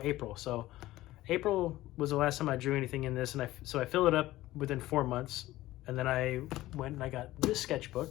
April. So April was the last time I drew anything in this, and I filled it up within 4 months. And then I went and I got this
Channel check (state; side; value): quieter; right; 16.3 dB